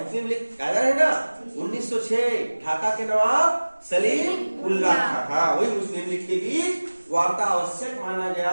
मुस्लिम लीग कायदा है ना 1906, ढाका के नवाब सलीम उल्लाह खां, हाँ वही मुस्लिम लीग के बीच वार्ता आवश्यक माना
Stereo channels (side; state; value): both; inverted; correlation -1.00